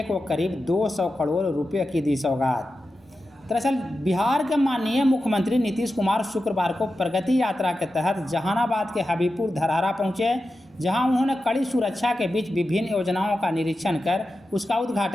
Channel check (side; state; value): both; normal; correlation 0.92